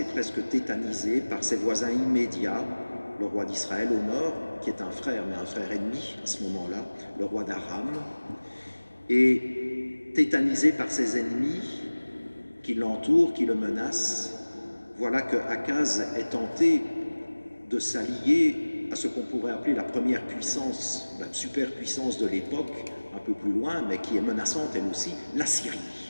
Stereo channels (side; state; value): both; inverted; correlation -1.00